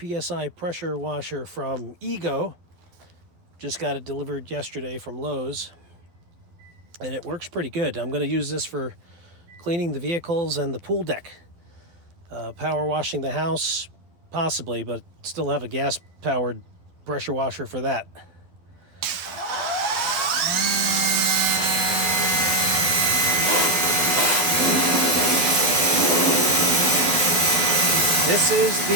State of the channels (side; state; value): left; late; 12 ms